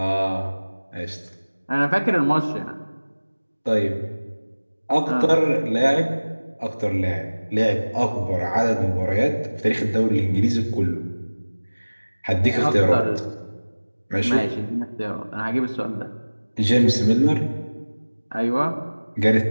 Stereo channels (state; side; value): inverted; both; correlation -1.00